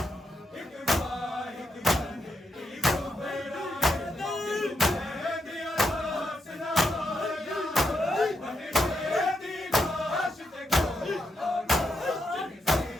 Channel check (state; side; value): normal; both; correlation 0.81